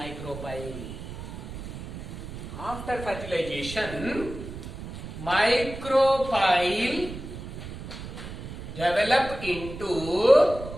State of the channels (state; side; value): noise; right; rumble, 10 dB below the sound